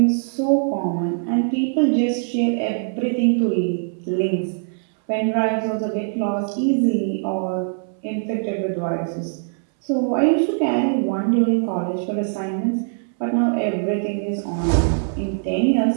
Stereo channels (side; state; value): left; silent; 64 dB below the other